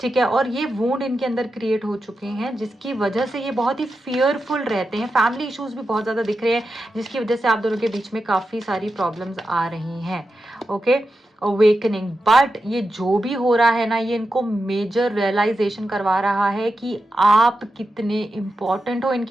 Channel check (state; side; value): normal; both; correlation 0.89